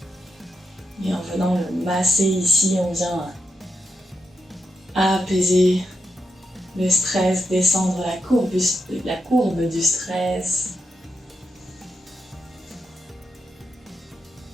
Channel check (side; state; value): both; normal; correlation 0.85